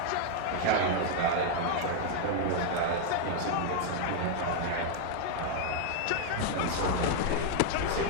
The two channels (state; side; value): different; both; correlation 0.00